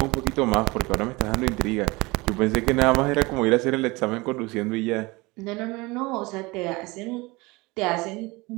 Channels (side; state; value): left; quieter; 23.7 dB